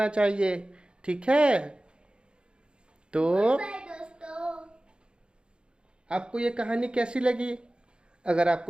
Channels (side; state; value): left; late; 0.052 ms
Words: चाहिए। ठीक है? तो आपको ये कहानी कैसी लगी? अगर